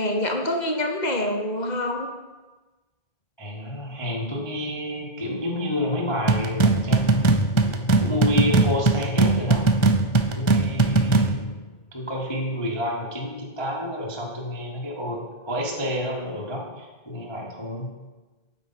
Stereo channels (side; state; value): right; late; 1.4 ms